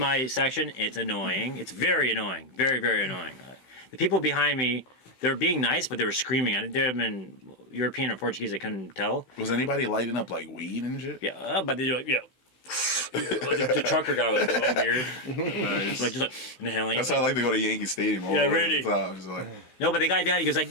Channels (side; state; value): right; late; 16 ms